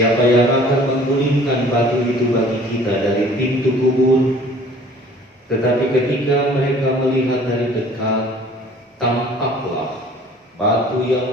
yang akan menggulingkan batu itu bagi kita dari pintu kubur?" Tetapi ketika mereka melihat dari dekat, tampaklah batu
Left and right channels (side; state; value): both; normal; correlation 0.51